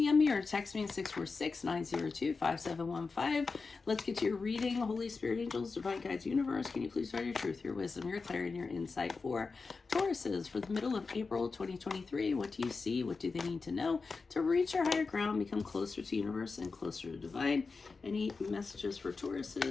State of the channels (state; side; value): quieter; right; 4.4 dB